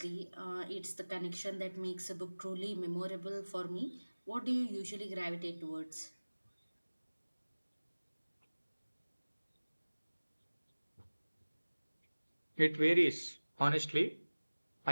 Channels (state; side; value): inverted; both; correlation -1.00